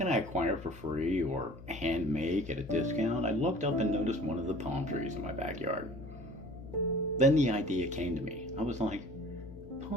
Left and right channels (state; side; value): noise; left; hum, 15 dB below the sound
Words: I acquire for free or hand make at a discount, I looked up and noticed one of the palm trees in my backyard. Then the idea came to me. I was like,